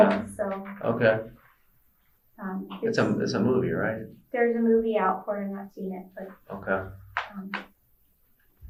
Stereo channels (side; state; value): both; identical; correlation 1.00